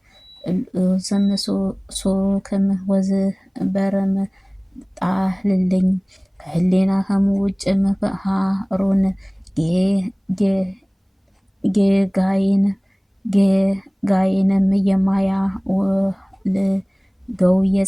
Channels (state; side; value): identical; both; correlation 1.00